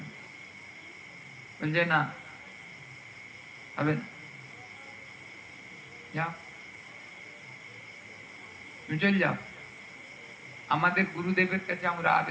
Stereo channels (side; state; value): both; identical; correlation 1.00